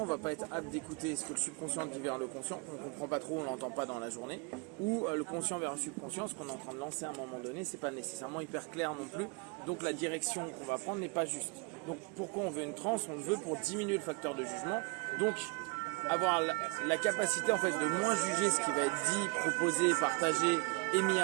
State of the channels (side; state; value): left; quieter; 32.5 dB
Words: on ne va pas être apte d'écouter ce que le subconscient dit vers le conscient, on ne comprend pas trop, on ne l'entend pas dans la journée, ou le conscient vers le subconscient, ce qu'on est en train de lancer à un moment donné, c'est pas nécessairement hyper clair non plus, donc la direction qu'on va prendre n'est pas juste. Donc pourquoi on veut une transe? On le veut pour diminuer le facteur de jugement, donc avoir la capacité en fait de moins juger ce qui va être dit, proposé, partagé, émis